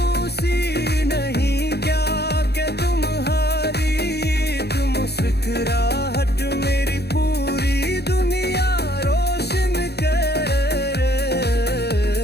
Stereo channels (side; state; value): right; late; 0.48 ms